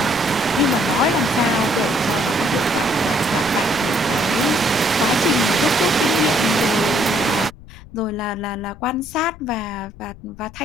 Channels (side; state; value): left; noise; rumble, 18 dB below the sound